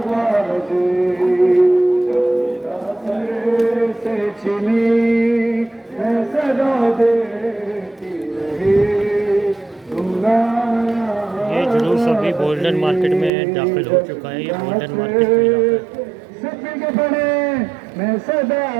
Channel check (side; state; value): left; drops out; at 13.3 s